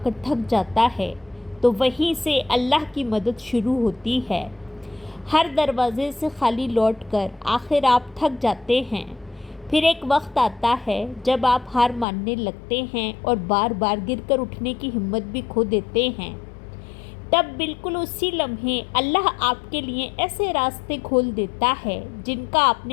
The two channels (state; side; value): drops out; right; at 12.1 s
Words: کر تھک جاتا ہے تو وہیں سے اللہ کی مدد شروع ہوتی ہے۔ ہر دروازے سے خالی لوٹ کر آخر آپ تھک جاتے ہیں۔ پھر ایک وقت آتا ہے جب آپ ہار ماننے لگتے ہیں اور بار بار گر کر اٹھنے کی ہمت بھی کھو دیتے ہیں۔ تب بالکل اسی لمحے اللہ آپ کے لیے ایسے راستے کھول دیتا ہے جن کا آپ